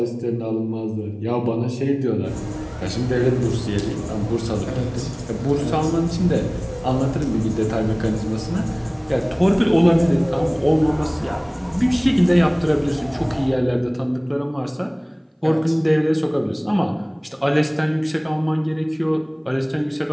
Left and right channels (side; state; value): both; identical; correlation 1.00